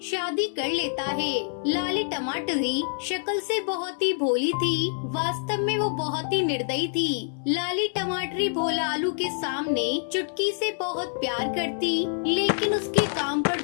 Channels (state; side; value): silent; right; 56 dB below the other